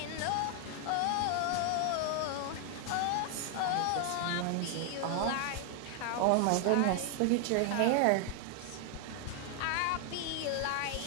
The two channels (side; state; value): both; different; correlation 0.00